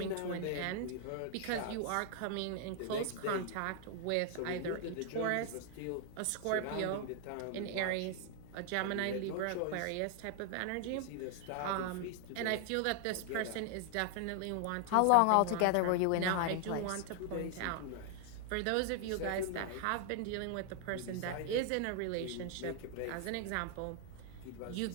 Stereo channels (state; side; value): different; both; correlation 0.00